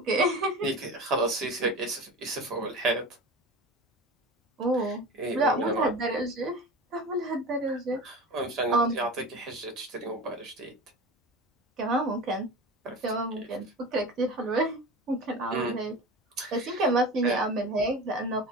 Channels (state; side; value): normal; both; correlation 0.32